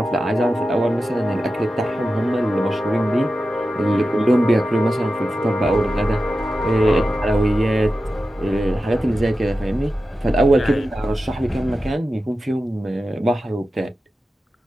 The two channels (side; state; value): both; normal; correlation 0.92